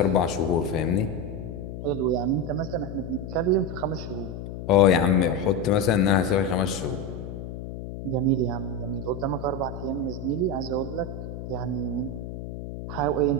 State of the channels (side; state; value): left; noise; hum, 8 dB below the sound